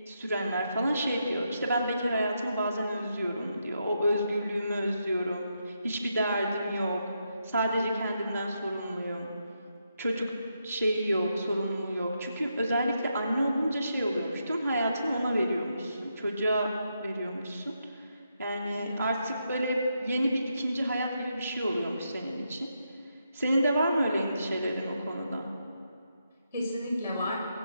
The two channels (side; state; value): both; inverted; correlation -0.82